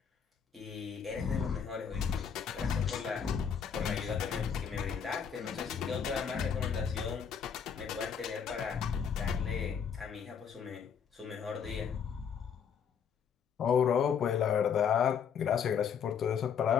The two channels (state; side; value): quieter; right; 7.2 dB